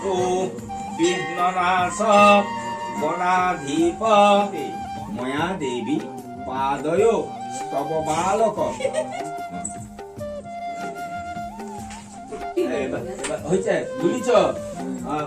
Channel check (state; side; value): identical; both; correlation 1.00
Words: বিঘ্ননাশ গণাধিপ ময়া দেবী পাদয় স্তব বালক। হয়েছে, বুঝিছ?